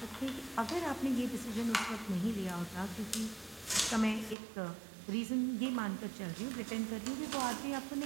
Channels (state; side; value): drops out; left; at 4.4 s